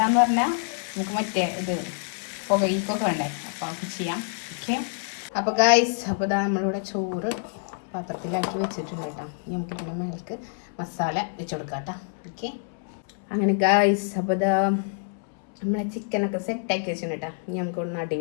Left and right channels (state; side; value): silent; right; 61 dB below the other